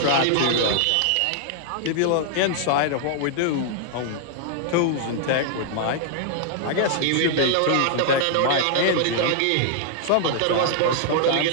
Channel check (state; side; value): different; both; correlation -0.01